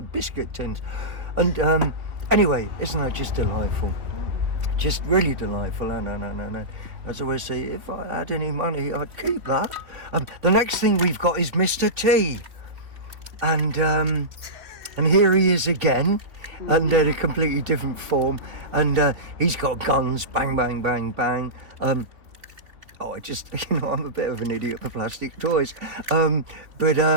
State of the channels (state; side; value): late; left; 2.8 ms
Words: biscuit tins. And anyway, isn't that just delightful? Just really delightful. No. As I always say, if I had any money, I'd keep that. The next thing we've got is Mr. T. And here he is again, under a completely different form. And he's got guns, bang, bang, bang, bang. I'm a bit of an idiot for plastic toys.